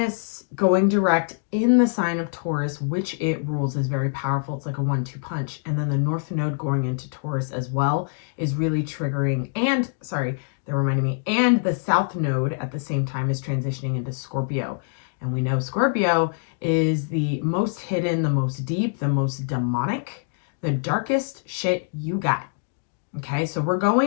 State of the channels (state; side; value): silent; right; digital silence